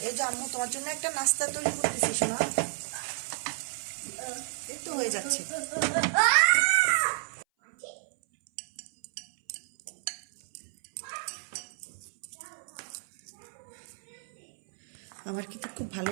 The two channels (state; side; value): silent; left; 57 dB below the other